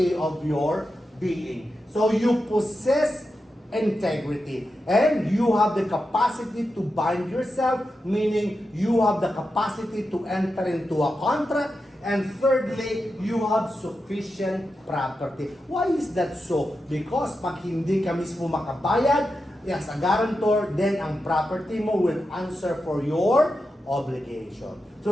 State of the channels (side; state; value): both; normal; correlation 0.89